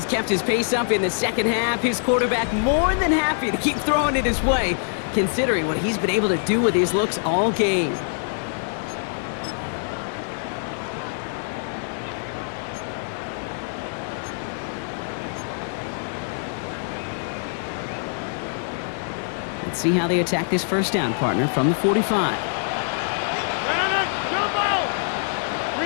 kept his pace up in the second half. His quarterback more than happy to keep throwing it his way, considering what he's been able to do with his looks all game. Let's see how they attack this first down, partner, from the 45.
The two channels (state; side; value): silent; right; digital silence